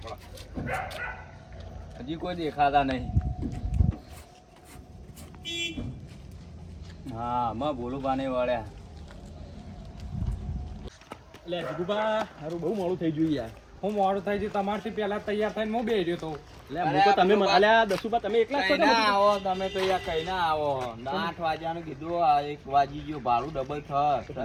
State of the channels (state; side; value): identical; both; correlation 1.00